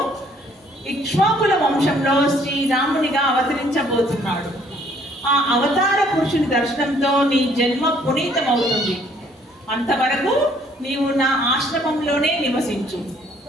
ఇక్ష్వాకుల వంశంలో శ్రీరామునిగా అవతరించబోతున్నాడు. ఆ అవతార పురుషుని దర్శనంతో నీ జన్మ పునీతమవుతుంది. అంతవరకు నీవు నా ఆశ్రమంలోనే నివసించు.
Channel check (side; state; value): both; normal; correlation 0.62